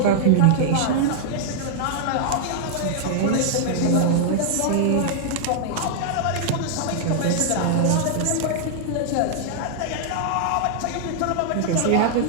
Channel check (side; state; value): both; different; correlation -0.01